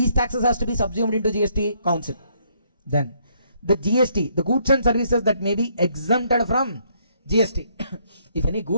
taxes has to be subsumed into GST? Council. Then the GST, the goods and services that may be exempted from GST. If any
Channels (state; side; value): inverted; both; correlation -0.69